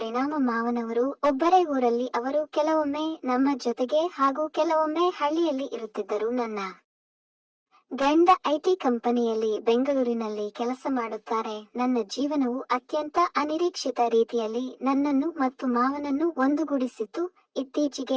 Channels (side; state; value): both; identical; correlation 1.00